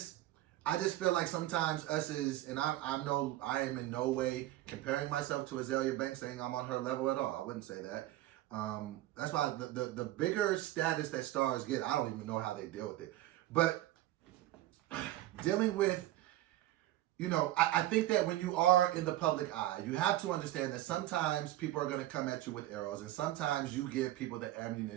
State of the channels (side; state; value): left; quieter; 15.4 dB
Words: feel like sometimes and I am in no way comparing myself to Azalea Banks, saying I'm on her level at all. I wouldn't say that. That's why the bigger status that stars get, I don't even know how they deal with it. But dealing with, I think that when you are in the public eye, you have to understand that sometimes people are going to come at you with arrows, and sometimes you give people the